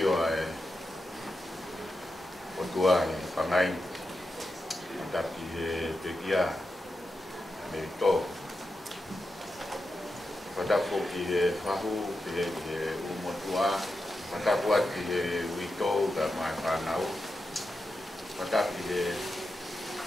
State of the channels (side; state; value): both; normal; correlation 0.88